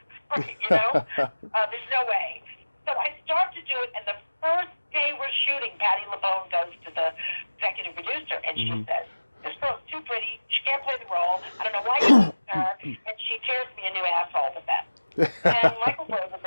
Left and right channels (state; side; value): inverted; both; correlation -1.00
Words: you know? There's no way. So I start to do it, and the first day we're shooting, Patti LuPone goes to the executive producer, and she says, this girl's too pretty. She can't play the role. I don't know why you picked her. And she tears me a new asshole with that. And Michael